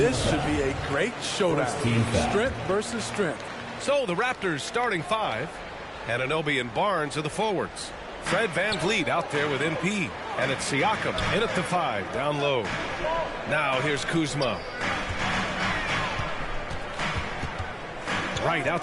should be a great showdown. Strength versus strength. So the Raptors starting five. Anunoby and Barnes are the forwards. Fred VanVleet out there with MP. And it's Siakam in at the 5, down low. Now here's Kuzma. Right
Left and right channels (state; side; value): identical; both; correlation 1.00